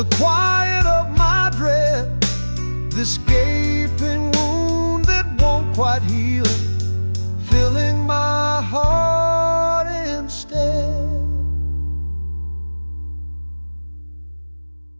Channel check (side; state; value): both; inverted; correlation -1.00